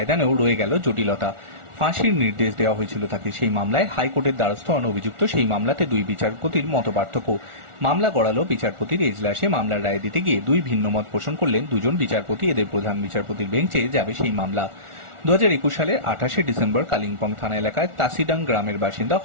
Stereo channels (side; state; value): left; late; 1.4 ms